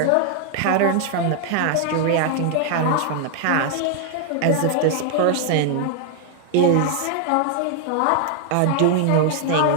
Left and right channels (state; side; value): different; both; correlation 0.00